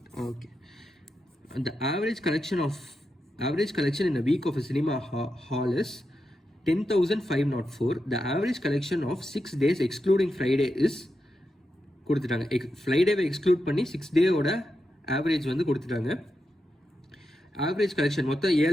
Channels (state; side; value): normal; both; correlation 0.87